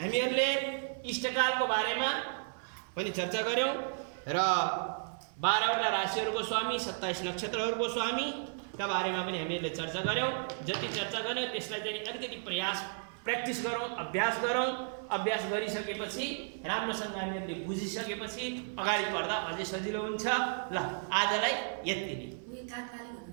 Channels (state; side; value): silent; left; 55 dB below the other